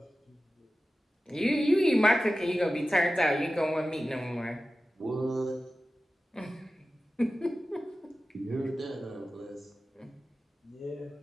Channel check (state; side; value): normal; both; correlation 0.95